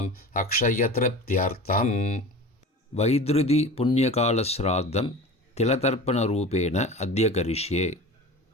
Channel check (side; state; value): both; normal; correlation 0.35